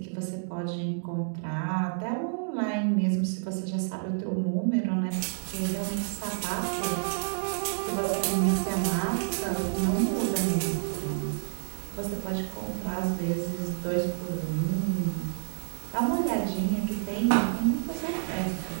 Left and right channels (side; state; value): left; silent; digital silence